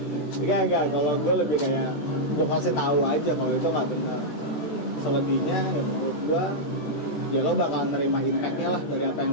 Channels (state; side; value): late; right; 13 ms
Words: Enggak, kalau gue lebih kayak gue kasih tahu aja kalau itu nggak benar. Selebihnya ya menurut gue ya lo bakal nerima impact-nya lah dari apa yang